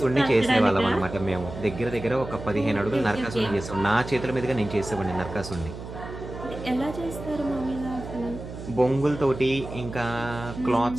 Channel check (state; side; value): noise; right; hum, 11 dB below the sound